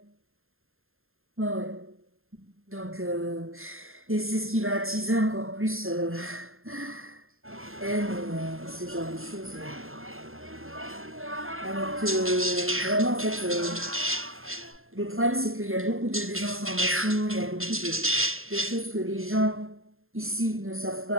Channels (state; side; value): late; left; 0.61 ms